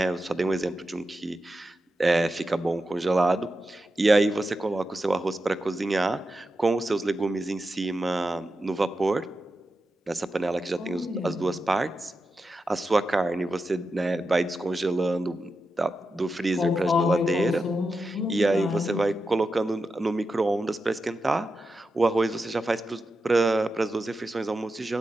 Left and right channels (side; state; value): both; normal; correlation 0.89